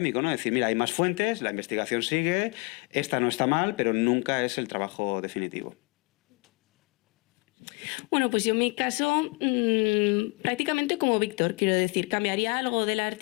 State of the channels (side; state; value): right; quieter; 29.5 dB